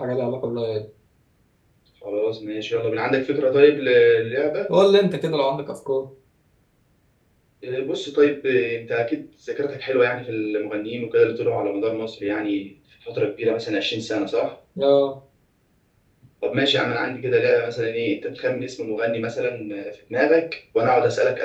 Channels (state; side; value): identical; both; correlation 1.00